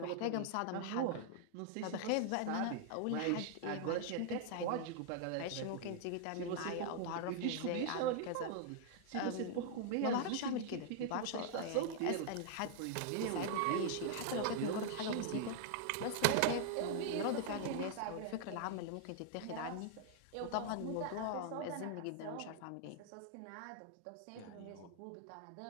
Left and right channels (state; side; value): different; both; correlation -0.01